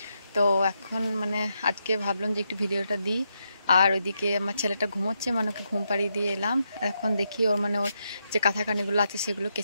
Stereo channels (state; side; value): inverted; both; correlation -0.82